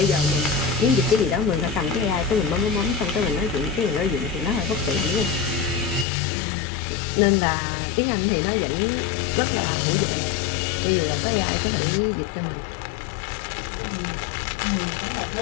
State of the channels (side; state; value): right; drops out; at 6.1 s